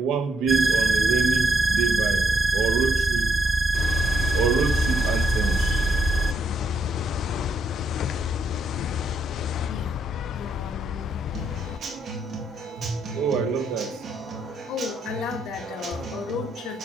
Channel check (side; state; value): both; normal; correlation 0.76